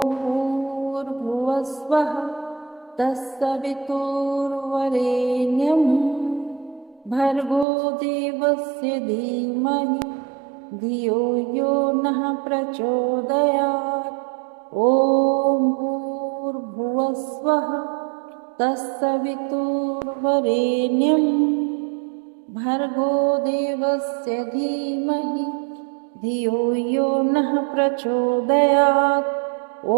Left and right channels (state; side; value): drops out; left; at 7.7 s